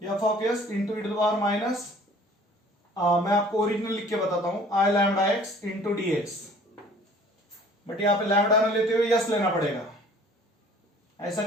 f of s into e to the power minus, मैं आपको ओरिजिनल लिख के बताता हूं, i lambda x into d x, but यहां पे लैम्डा ना लेते हुए यस लेना पड़ेगा। ऐसा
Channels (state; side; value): normal; both; correlation 0.51